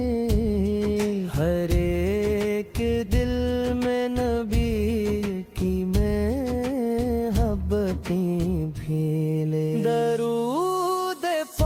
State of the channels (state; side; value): identical; both; correlation 1.00